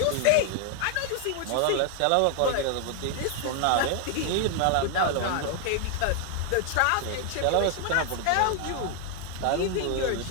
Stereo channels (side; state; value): both; different; correlation 0.00